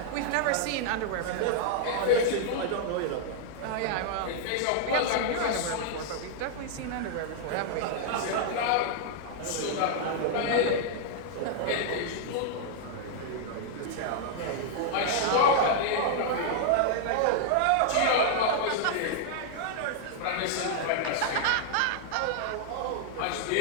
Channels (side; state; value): both; different; correlation -0.01